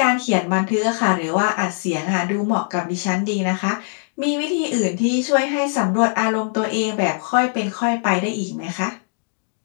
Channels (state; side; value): silent; right; digital silence